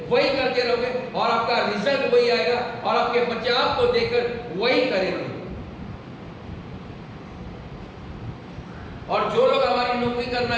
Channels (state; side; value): identical; both; correlation 1.00